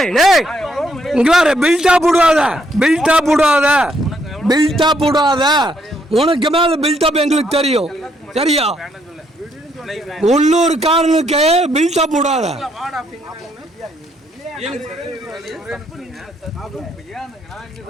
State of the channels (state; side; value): normal; both; correlation 0.72